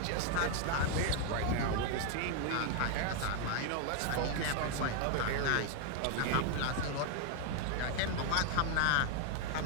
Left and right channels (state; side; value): different; both; correlation 0.00